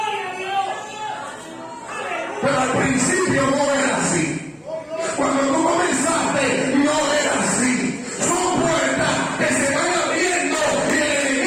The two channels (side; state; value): both; identical; correlation 1.00